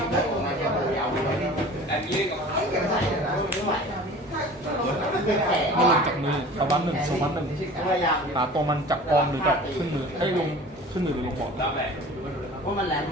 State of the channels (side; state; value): both; normal; correlation 0.42